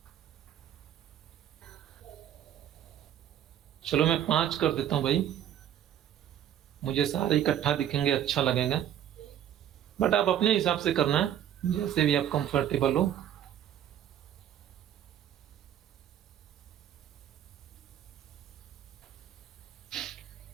चलो मैं 5 कर देता हूं भाई, मुझे सारे इकट्ठा दिखेंगे, अच्छा लगेगा। बट आप अपने हिसाब से करना, जैसे भी आप कंफर्टेबल हो।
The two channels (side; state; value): left; quieter; 10.6 dB